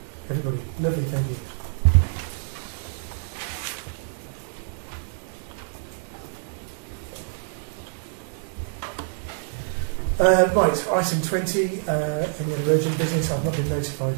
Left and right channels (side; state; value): left; silent; digital silence